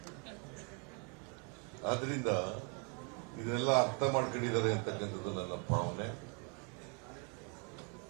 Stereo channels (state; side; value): quieter; left; 37.1 dB